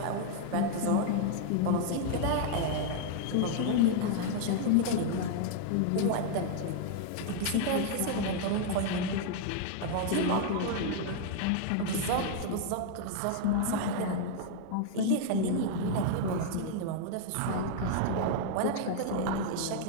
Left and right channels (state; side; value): different; both; correlation 0.00